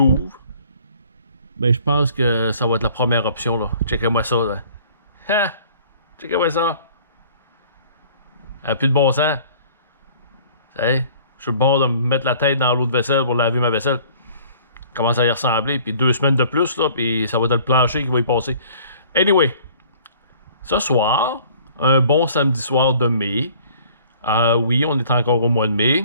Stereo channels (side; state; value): both; inverted; correlation -0.53